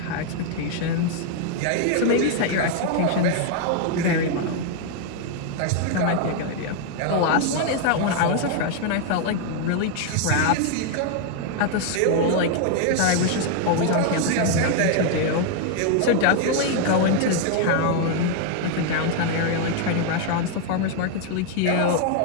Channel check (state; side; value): different; both; correlation 0.00